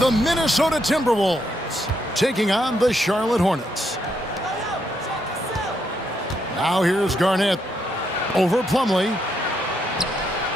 Minnesota Timberwolves taking on the Charlotte Hornets. Now here's Garnett over Plumlee.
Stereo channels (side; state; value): both; normal; correlation 0.77